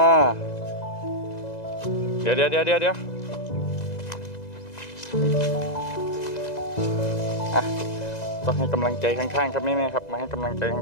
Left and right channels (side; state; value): right; late; 2.0 ms